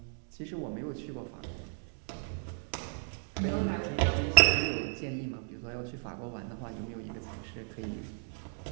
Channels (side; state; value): left; silent; 55 dB below the other